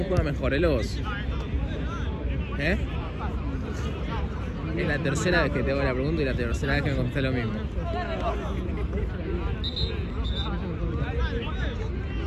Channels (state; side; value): identical; both; correlation 1.00